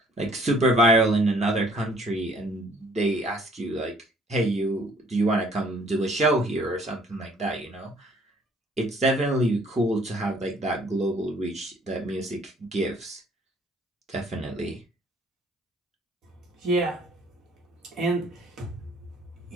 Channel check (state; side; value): normal; both; correlation 0.59